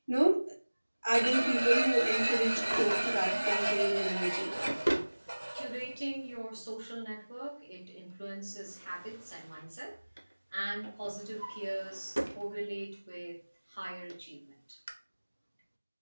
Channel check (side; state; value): both; inverted; correlation -1.00